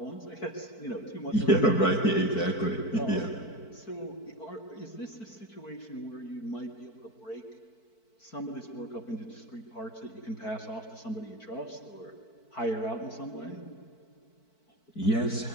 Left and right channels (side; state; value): right; late; 4.5 ms